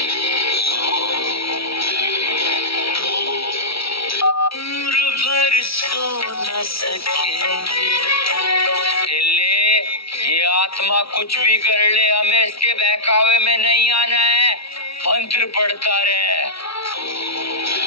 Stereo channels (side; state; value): right; late; 0.76 ms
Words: उम्र भर सो न सकेंगे। चले, ये आत्मा कुछ भी कर ले, हमें इसके बहकावे में नहीं आना है। मंत्र पढ़ता रहे।